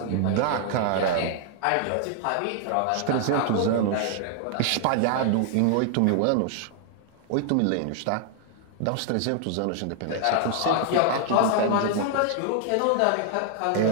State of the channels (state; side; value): different; both; correlation 0.00